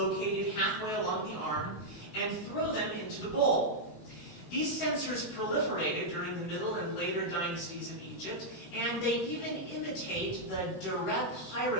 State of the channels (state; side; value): late; right; 17 ms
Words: halfway along the arm and throw them into the bowl. These censers proliferated during the middle and later dynasties of Egypt, and they even imitate the direct